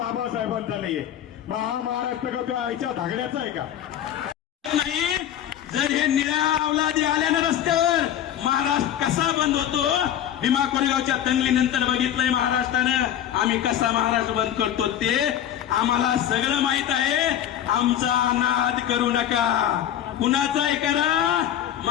नाहीये, मग हा महाराष्ट्र का तुझ्या आईच्या धागड्याचा आहे का? नाही. जर हे निळ्या अवलादी आल्या ना रस्त्यावर, महाराष्ट्र कसा बंद होतो? भीमा कोरेगावच्या दंगलीनंतर बघितलंय महाराष्ट्रानं आम्ही कसा महाराष्ट्र बंद करतो ते आम्हाला सगळं माहित आहे. आमचा नाद करू नका. कुणाचाही करा,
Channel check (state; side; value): quieter; right; 10.8 dB